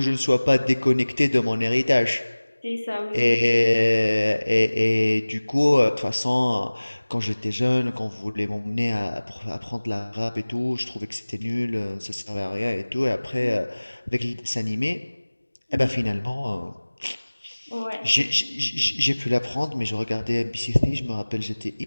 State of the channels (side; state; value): both; inverted; correlation -1.00